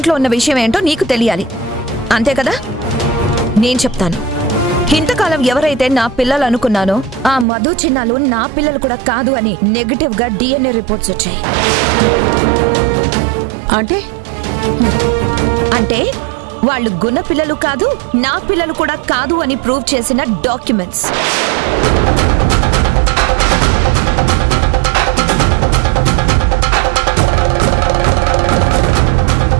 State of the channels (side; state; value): left; drops out; at 7.5 s